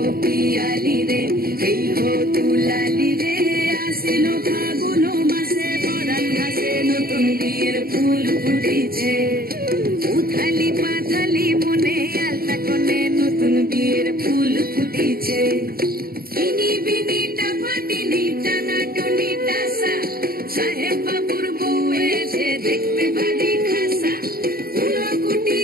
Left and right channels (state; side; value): late; left; 0.43 ms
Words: পিয়ালি রে, এই হো দুলালি রে। আশ্বিন ফাগুন মাসে পরাণ ঘাসে নতুন বিয়ের ফুল ফুটিছে। উথালি পাথালি মনে আলতা কোণে নতুন বিয়ের ফুল ফুটিছে। ইনি বিনি টাপাটিনি টানা টুনি টাসা, সাহেব বাবুর বউ এসে দেখতে ভারী খাসা।